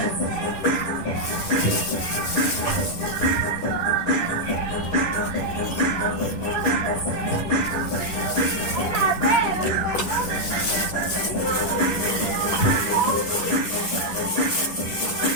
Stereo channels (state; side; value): late; right; 10 ms